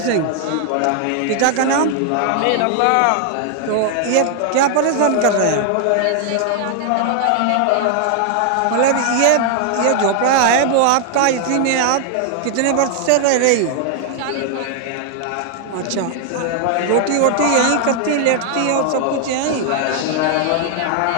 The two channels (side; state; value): both; different; correlation 0.00